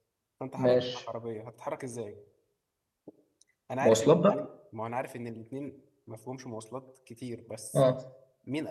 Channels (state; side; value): identical; both; correlation 1.00